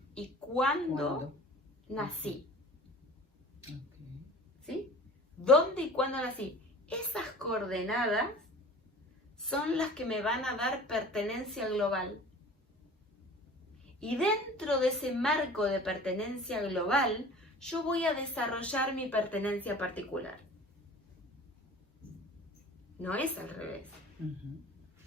y cuándo nací. Okay. ¿Sí? ¿Dónde y cuándo nací? Esas coordenadas son las que me van a dar pertenencia global. Y dentro de ese marco de pertenencia global, yo voy a desarrollar mi pertenencia particular. No es al revés.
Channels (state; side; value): normal; both; correlation 0.42